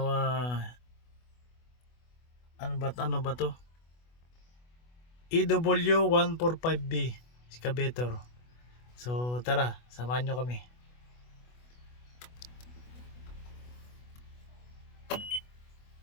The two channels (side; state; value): right; late; 24 ms